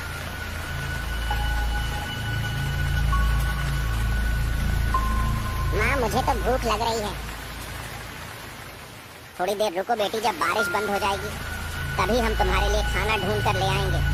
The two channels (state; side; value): identical; both; correlation 1.00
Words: मुझे तो भूख लग रही है। थोड़ी देर रुको बेटी, जब बारिश बंद हो जाएगी तभी हम तुम्हारे लिए खाना ढूंढ कर ले आएंगे।